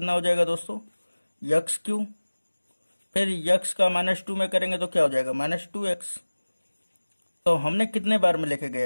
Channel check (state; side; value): inverted; both; correlation -1.00